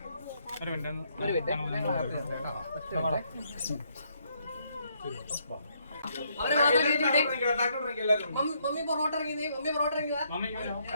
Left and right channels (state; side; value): inverted; both; correlation -0.72